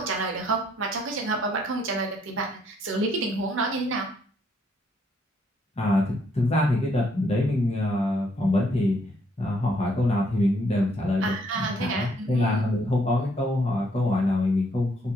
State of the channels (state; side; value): normal; both; correlation 0.70